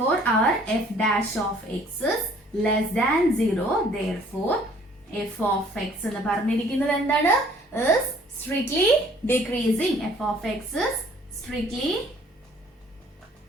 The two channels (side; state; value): both; normal; correlation 0.57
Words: our f dash of x is less than 0. therefore f of x എന്ന് പറഞ്ഞിരിക്കുന്നത് എന്താണ്? is strictly decreasing. f of x is strictly